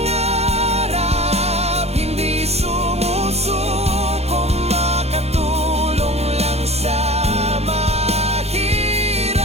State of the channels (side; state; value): left; late; 0.31 ms